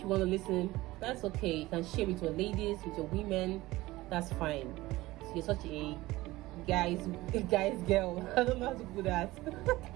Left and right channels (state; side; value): quieter; left; 18.6 dB